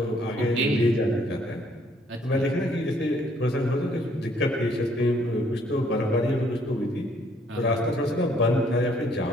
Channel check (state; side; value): normal; both; correlation 0.65